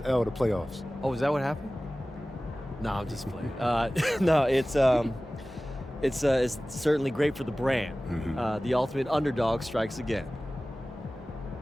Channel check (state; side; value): normal; both; correlation 0.97